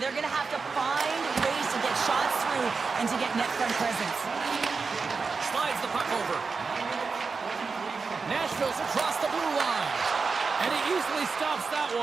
going to have to find ways to get shots through and to get net front presence. Slides the puck over. Nashville's across the blue line. And he easily stops that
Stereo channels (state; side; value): quieter; left; 4.7 dB